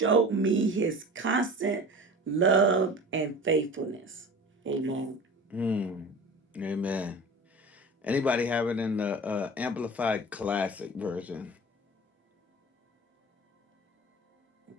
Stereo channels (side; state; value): both; normal; correlation 0.37